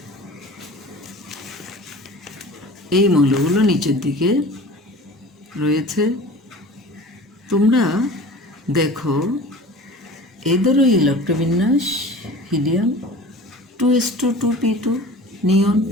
এই মৌলগুলো নিচের দিকে রয়েছে। তোমরা দেখো এদেরও ইলেকট্রবিন্যাস, হিলিয়াম 2s2 2p2, নিয়ন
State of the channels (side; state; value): both; normal; correlation 0.40